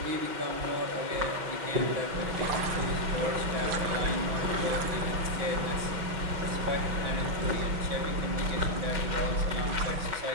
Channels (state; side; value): late; left; 6.0 ms